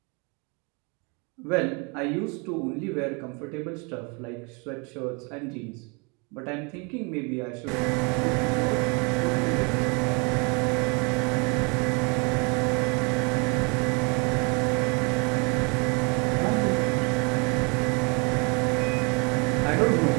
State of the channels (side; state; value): left; quieter; 31.9 dB